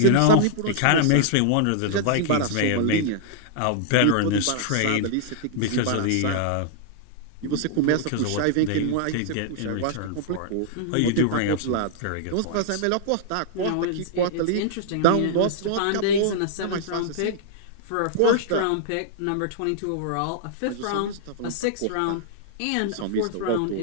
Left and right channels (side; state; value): both; different; correlation -0.01